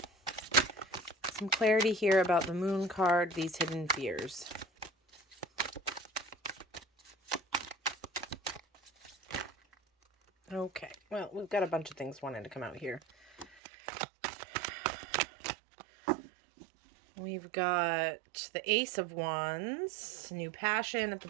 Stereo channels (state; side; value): drops out; left; at 13.6 s